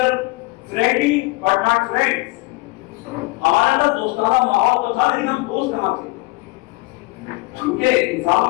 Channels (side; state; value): right; quieter; 23.2 dB